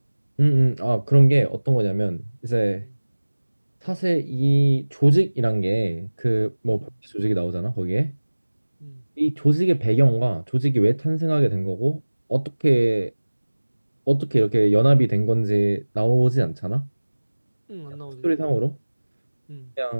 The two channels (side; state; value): both; inverted; correlation -1.00